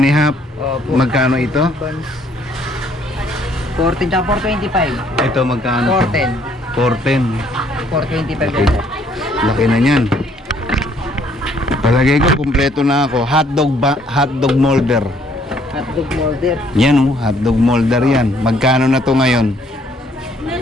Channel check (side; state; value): both; normal; correlation 0.64